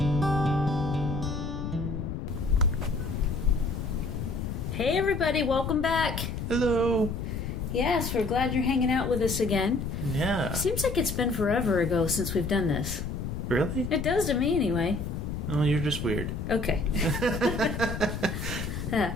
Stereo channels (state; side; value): noise; left; rumble, 4 dB below the sound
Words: Hey everybody, welcome back. Hello. Yes, we're glad you're hanging out with us again. Yeah. Seems like it's been forever ago since we've done this. Really? It does to me anyway. Oh, you're just weird. Okay.